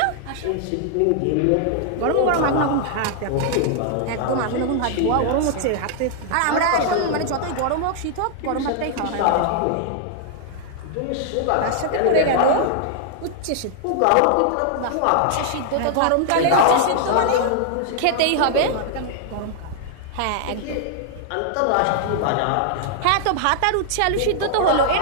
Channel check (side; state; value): both; different; correlation 0.00